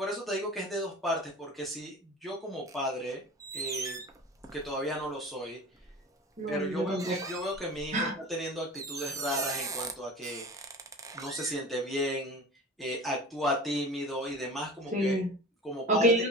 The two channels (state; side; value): normal; both; correlation 0.36